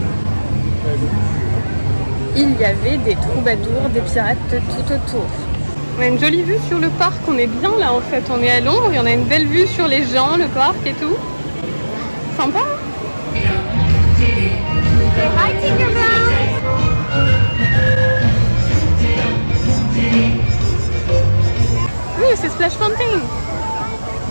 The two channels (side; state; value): both; inverted; correlation -1.00